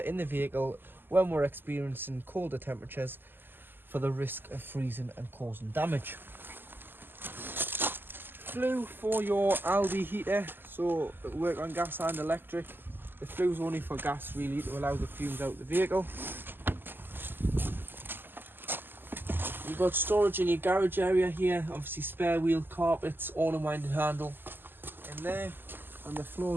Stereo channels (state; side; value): late; left; 0.094 ms